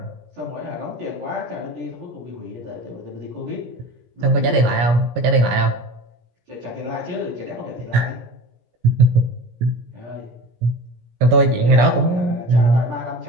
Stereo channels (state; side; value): late; left; 17 ms